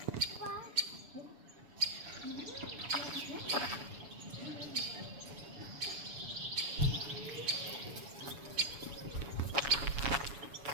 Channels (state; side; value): late; left; 7.1 ms